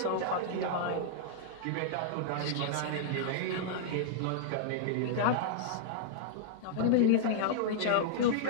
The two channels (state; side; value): different; both; correlation -0.02